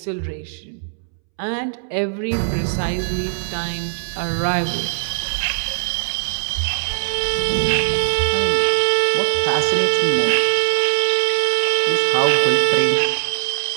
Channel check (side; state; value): left; silent; 66 dB below the other